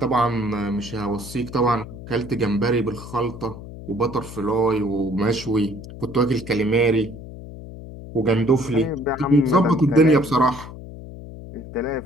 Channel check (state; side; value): noise; left; hum, 13 dB below the sound